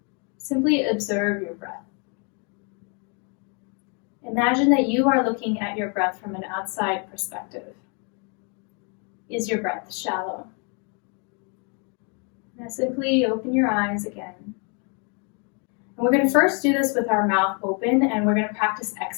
Simply observe your breath. Imagine that you are looking at your breath from an outside perspective. Is your breath shallow? Now simply open your eyes again. And we're going to first do this with our mouth open, and we're going to practice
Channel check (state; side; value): quieter; right; 37.0 dB